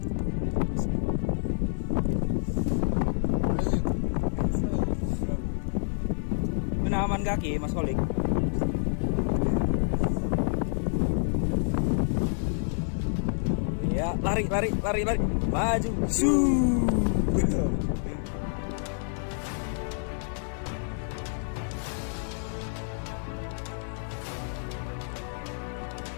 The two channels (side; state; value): right; silent; digital silence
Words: aman kaki Mas Kolik. Ya, lari. Maju.